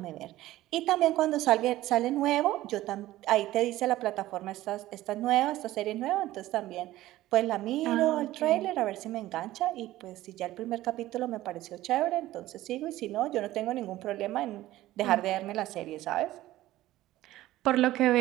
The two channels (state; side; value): quieter; left; 15.7 dB